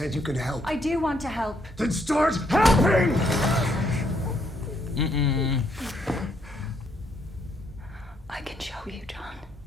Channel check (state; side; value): normal; both; correlation 0.72